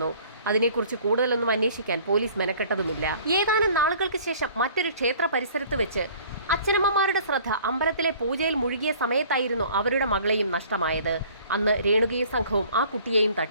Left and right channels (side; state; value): both; inverted; correlation -0.52